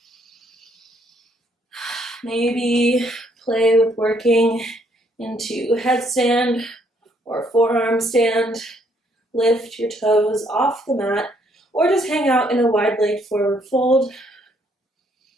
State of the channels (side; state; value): both; normal; correlation 0.69